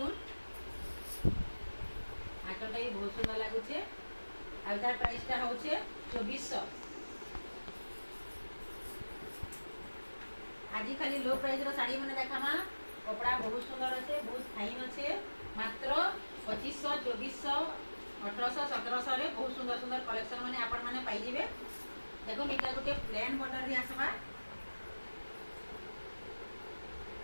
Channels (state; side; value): inverted; both; correlation -1.00